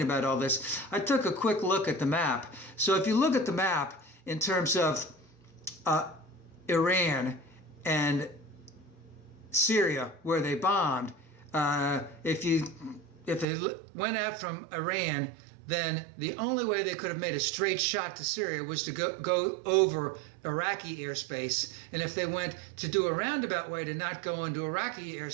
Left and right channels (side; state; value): left; drops out; at 13.5 s